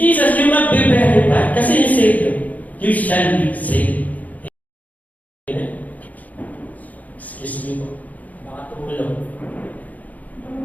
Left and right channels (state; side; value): late; right; 0.077 ms